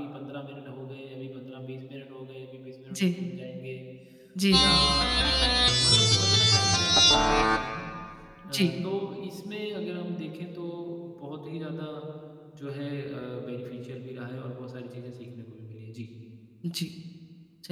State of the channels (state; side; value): identical; both; correlation 1.00